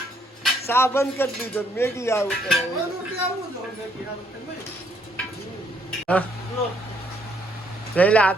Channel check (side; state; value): both; normal; correlation 0.69